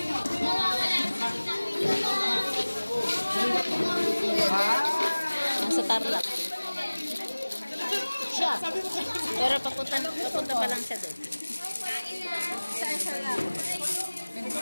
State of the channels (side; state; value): both; inverted; correlation -1.00